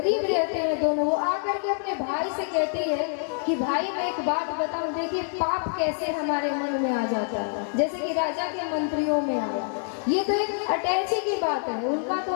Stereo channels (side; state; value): right; silent; 60 dB below the other